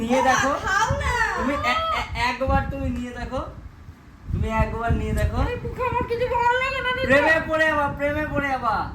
নিয়ে দেখো, খাও না। তুমি একবার তুমি নিয়ে দেখো, তুমি একবার নিয়ে দেখো, আমার কিছু ভালো লাগে না প্রেমে পড়ে যাবা।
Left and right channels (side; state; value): both; identical; correlation 1.00